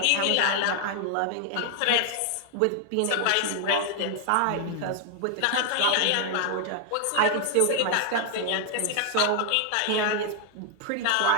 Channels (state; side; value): different; both; correlation 0.00